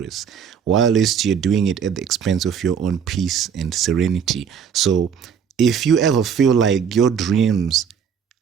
while you're doing it at the expense of your own peace and serenity. So if you ever feel like your dreams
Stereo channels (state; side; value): quieter; left; 7.3 dB